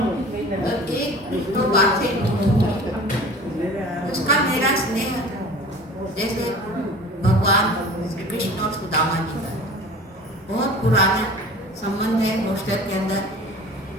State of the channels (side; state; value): both; normal; correlation 0.41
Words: एक दो बात से उसका मेरा स्नेह जैसे भगवान श्री कृष्ण और सुदामा जी का बहुत पुराना संबंध है। हॉस्टल के अंदर